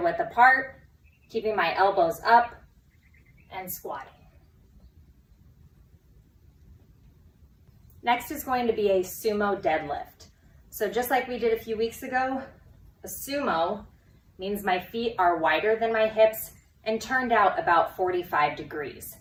apart, keeping my elbows up and squatting. Next is going to be a sumo deadlift. So just like we did a few weeks ago, a sumo means my feet are wider than my hips and turned out about 45 degrees.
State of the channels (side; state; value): both; identical; correlation 1.00